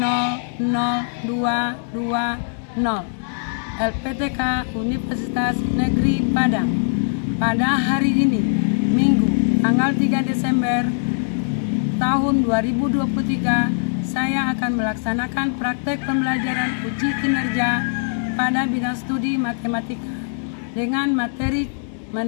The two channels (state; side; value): silent; right; 63 dB below the other